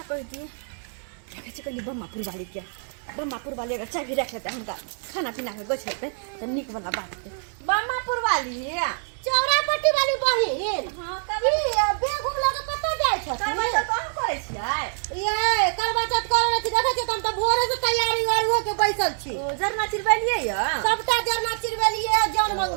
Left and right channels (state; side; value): silent; left; digital silence